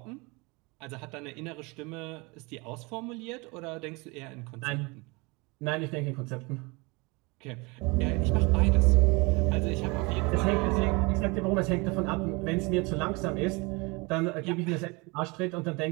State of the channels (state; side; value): quieter; left; 27.2 dB